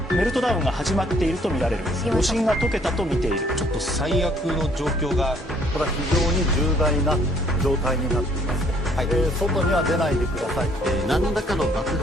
メルトダウンが始まっていると見られる。余震が解けたと見ている。ちょっと最悪の状況が、これは非常に重大な状態になっています。はい、外には出ないでください。何らかの爆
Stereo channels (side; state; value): both; normal; correlation 0.62